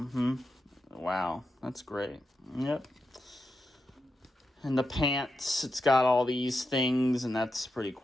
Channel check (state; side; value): normal; both; correlation 0.88